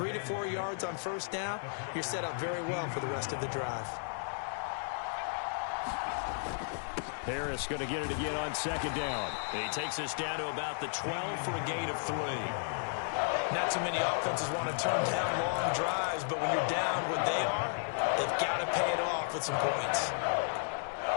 to 4 yards on first down, you're set up very well for the rest of the drive. Harris going to get it again on 2nd down. He takes us down to about the 12 for a gain of 3. Not too many offenses want to turn down long drives, but when you're down what they are, they've got to pay it off with some points.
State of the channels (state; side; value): silent; right; digital silence